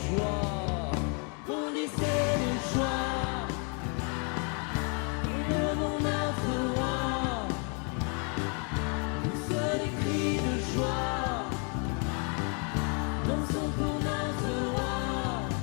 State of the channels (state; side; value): quieter; right; 38.3 dB